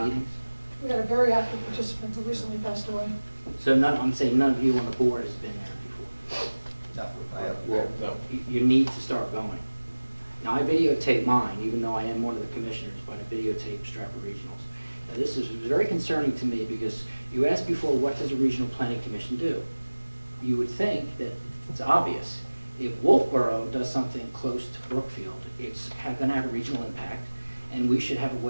We had a very active participant who recently passed away. So I'm saying none of you on the board has been there before. No, I haven't. Well, you need to start going. Now, I videotape mine, even though I am one of the commissioners, but I videotape Stratford Regionals. Now, this is very concerning to me because you asked before, what does a regional planning commission do? You would think that it's obvious. If Wolfboro does something close to Brookfield, it's going to have a regional impact, and we should have a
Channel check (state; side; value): inverted; both; correlation -1.00